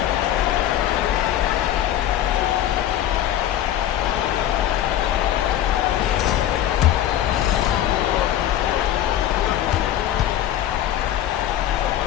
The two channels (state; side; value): quieter; right; 11.8 dB